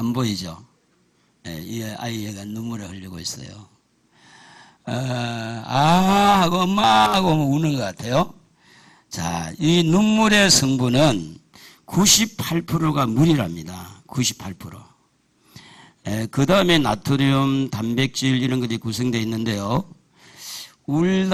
보이죠? 이 아이가 눈물을 흘리고 있어요. 하고 엄마 하고 우는 것 같아요. 자, 이 눈물의 성분은 98%가 물이랍니다. 98%. 그 다음에 나트륨, 단백질 이런 것들이 구성되어 있는데요.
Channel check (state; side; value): identical; both; correlation 1.00